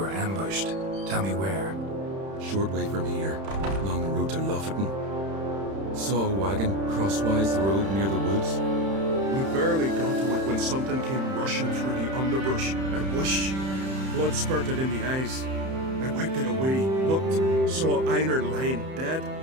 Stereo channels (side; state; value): left; late; 31 ms